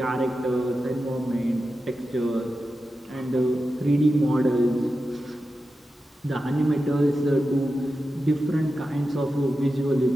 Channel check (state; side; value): normal; both; correlation 0.91